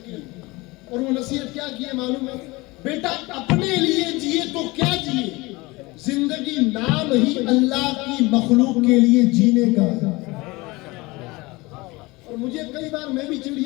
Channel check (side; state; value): right; quieter; 22.8 dB